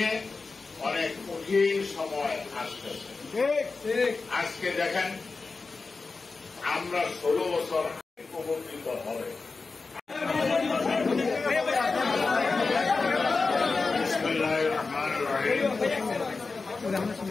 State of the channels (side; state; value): right; quieter; 4.1 dB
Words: অনেক কঠিন সময় আসতেছে। আজকে দেখেন আমরা 16 বছর উপকৃত হবে। বিসমিল্লাহির রহমানির রহিম।